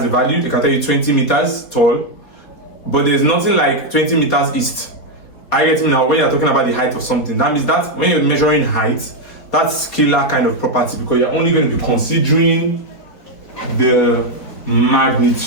a value. They can tell you 20 meters tall, but there's nothing like 20 meters east. I get it now. When you're talking about the height of something, that means that when you're measuring height, that's scalar kind of property because you're only going to be considering the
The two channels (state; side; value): late; right; 4.4 ms